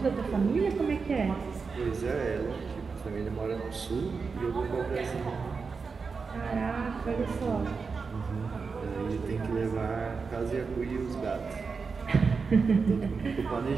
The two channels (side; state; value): left; quieter; 5.0 dB